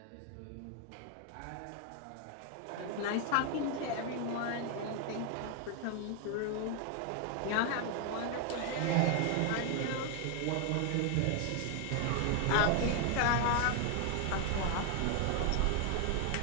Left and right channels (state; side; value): different; both; correlation 0.01